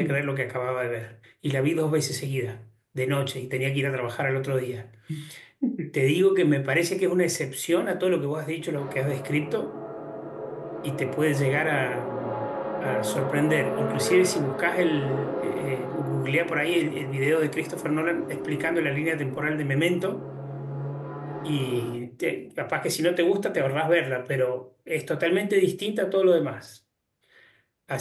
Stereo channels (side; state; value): both; identical; correlation 1.00